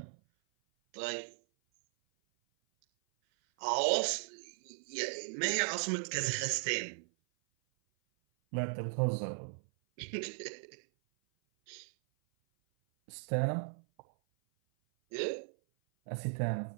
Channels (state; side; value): silent; left; 53 dB below the other